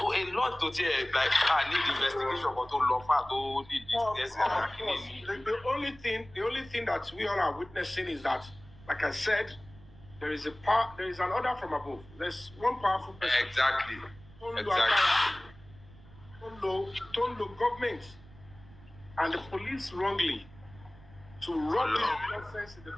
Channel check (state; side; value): noise; right; rumble, 22 dB below the sound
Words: a lot tó tiẹ̀ like need investigation kan tó lọ fà tó need discussing. The only thing that we all are witnessing is that, like I said, there is an order from above. There's one powerful person. Exactly. Tondo government and the police wrongly to rub this nonsense in the